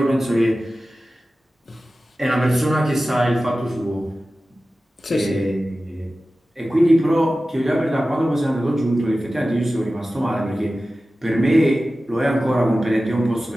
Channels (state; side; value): normal; both; correlation 0.95